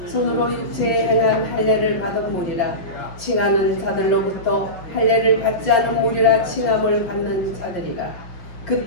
손으로 육체에 행한 할례를 받은 무리라. 칭하는 자들로부터 할례를 받지 않은 무리라 칭함을 받는 자들이라.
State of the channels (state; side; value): late; right; 5.7 ms